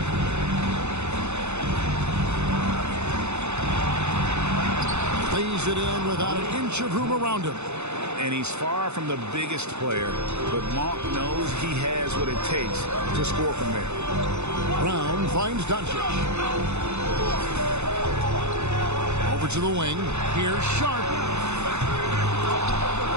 Plays it in without an inch of room around him. And he's far from the biggest player, but Monk knows he has what it takes to score from there. Brown finds Doncic. Over to the wing. Here's Sharp.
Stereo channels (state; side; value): late; left; 0.81 ms